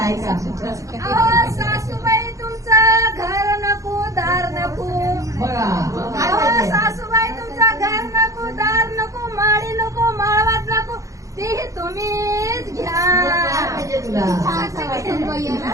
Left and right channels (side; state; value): left; late; 0.16 ms